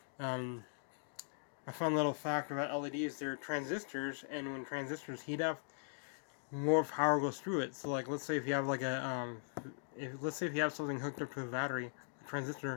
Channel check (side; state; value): right; silent; digital silence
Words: A fun little fact about LEDs: they're transistors, and when transistors heat up, more power goes through it. So, like, let's say if you have like a let's say if you have something hooked up to a battery, a